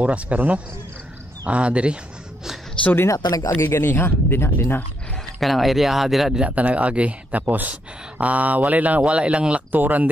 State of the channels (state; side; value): normal; both; correlation 0.77